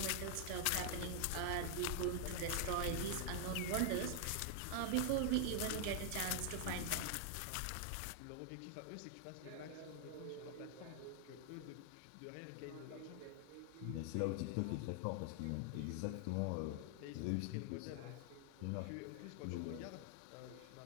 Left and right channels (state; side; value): different; both; correlation 0.00